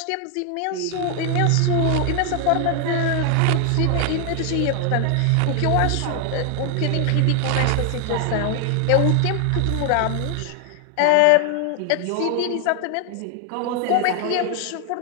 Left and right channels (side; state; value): both; different; correlation 0.00